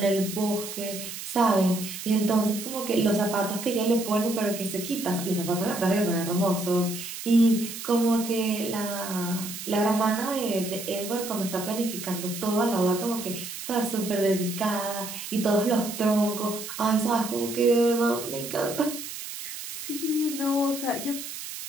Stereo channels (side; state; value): right; noise; hiss, 9 dB below the sound